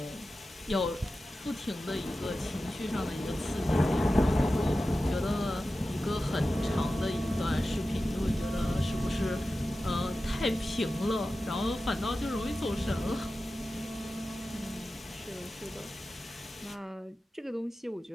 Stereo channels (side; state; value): both; normal; correlation 0.94